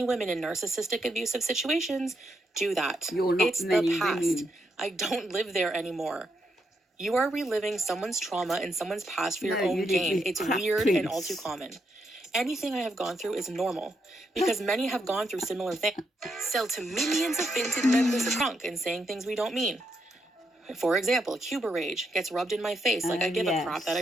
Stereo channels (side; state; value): both; normal; correlation 0.80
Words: women in narcissistic abusive situations do that. You're not It's the many past. women. I don't live there anymore. You are reliving someone's trauma and someone's past for your No, own you gain. did It's crap weird and all prince. too common. Anything I have gone through is normal because many have gone through similar things. Sell to millions of vintage members of drunk and saying things we don't mean. For example, Cuba rage gets rubbed in my face like I give a crap that